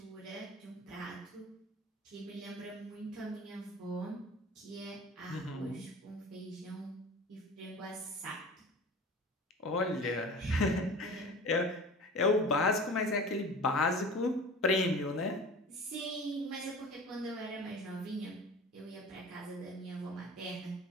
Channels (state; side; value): normal; both; correlation 0.38